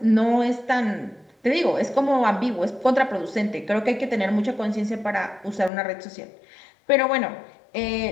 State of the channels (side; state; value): right; drops out; at 5.7 s